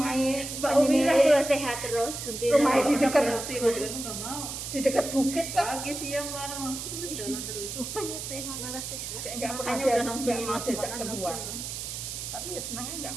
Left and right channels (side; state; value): right; noise; hiss, 6 dB below the sound